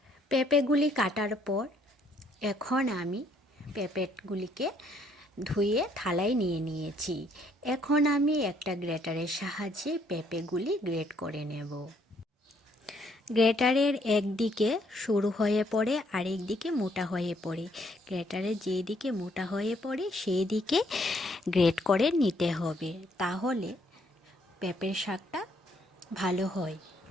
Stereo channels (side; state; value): both; normal; correlation 0.68